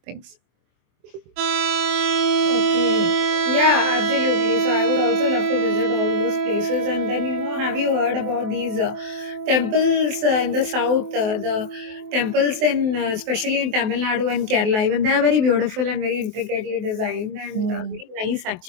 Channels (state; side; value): late; left; 23 ms